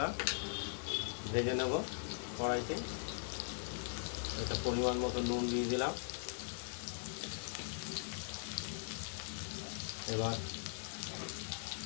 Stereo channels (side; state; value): right; silent; 51 dB below the other